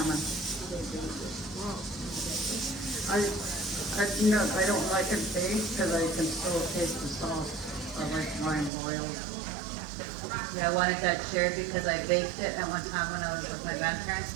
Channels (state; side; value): drops out; left; at 8.7 s